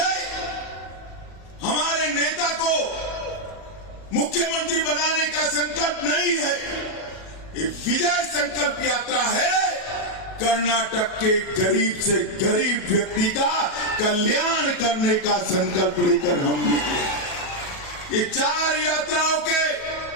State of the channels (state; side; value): late; right; 37 ms